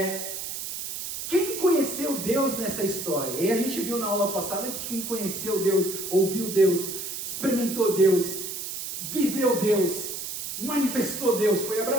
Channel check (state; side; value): noise; right; hiss, 6 dB below the sound